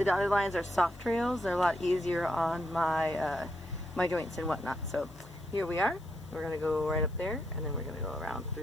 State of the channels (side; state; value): left; noise; hiss, 28 dB below the sound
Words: dotted lines are soft trails. They're a lot easier on my my joints and whatnot. So here we are. We're going to go right up there, and then we're going to go around